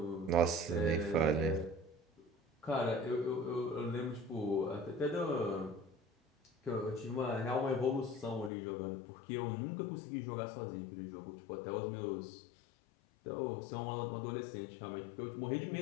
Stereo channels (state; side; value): drops out; right; at 8.5 s